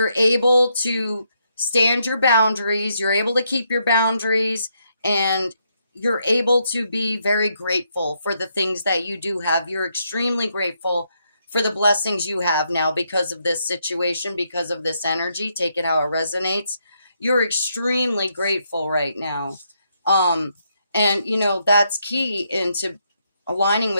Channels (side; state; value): both; inverted; correlation -0.77